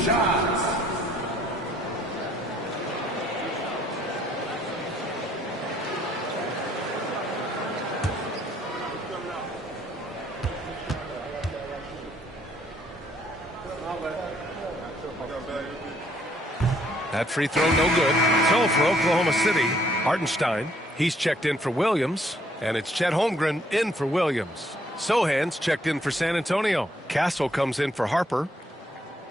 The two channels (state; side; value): normal; both; correlation 0.67